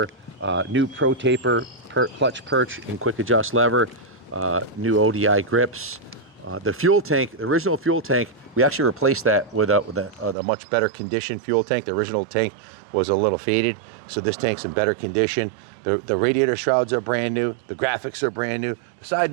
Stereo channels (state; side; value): drops out; left; at 10.4 s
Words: new Pro Taper clutch perch and quick adjust lever, new ODI grips. The fuel tank, the original fuel tank, we actually replaced that with a much better condition fuel tank. The original tank was a little faded, so this tank's in better condition. The radiator shrouds are brand new. The graphics are brand new. The side